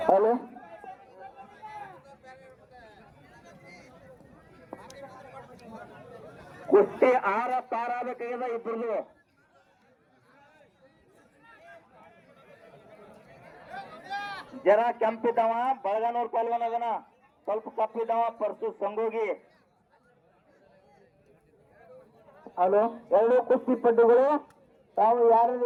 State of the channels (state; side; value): identical; both; correlation 1.00